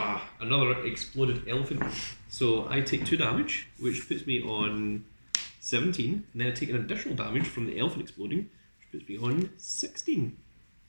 Another exploded elephant. So I take 2 damage, which puts me on 17, and then I take an additional damage from the elephant exploding, which puts me on 16.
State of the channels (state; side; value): inverted; both; correlation -1.00